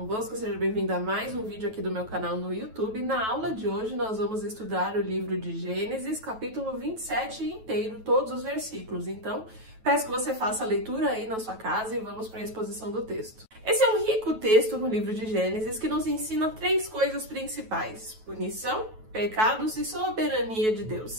seja bem-vindo a mais um vídeo aqui do meu canal no YouTube. Na aula de hoje nós vamos estudar o livro de Gênesis, capítulo 27 inteiro, todos os versículos. Então, peço que você faça a leitura aí na sua casa e vamos para a exposição do texto. Esse é um rico texto no livro de Gênesis que nos ensina três coisas principais: punição, pecados e soberania de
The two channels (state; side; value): late; left; 9.2 ms